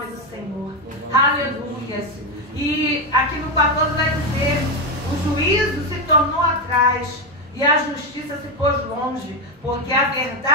do Senhor, aleluia. E aqui no 14 vai dizer, o juízo se tornou atrás, e a justiça se pôs longe, porque a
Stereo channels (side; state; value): both; normal; correlation 0.09